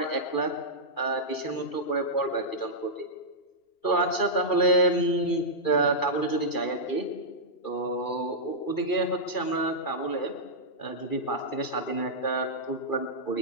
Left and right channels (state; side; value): late; right; 2.4 ms